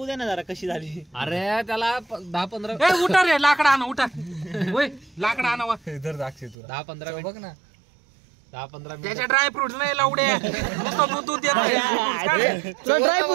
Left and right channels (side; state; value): left; drops out; at 6.6 s